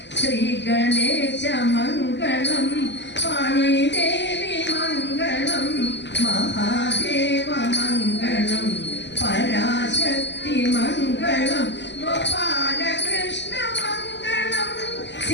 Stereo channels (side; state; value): right; late; 0.51 ms